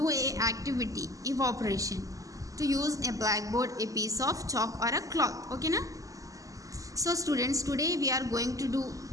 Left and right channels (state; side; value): late; left; 0.16 ms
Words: a activity evaporation to use a blackboard, a piece of chalk or a cloth. Okay na? So students, today we are going to do